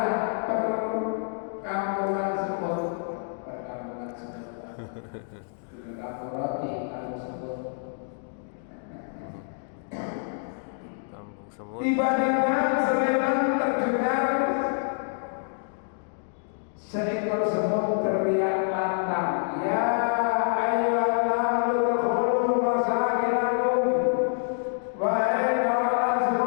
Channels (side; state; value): right; silent; digital silence